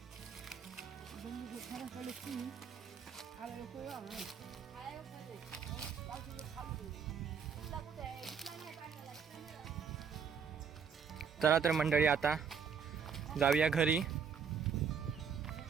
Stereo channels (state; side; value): quieter; left; 6.7 dB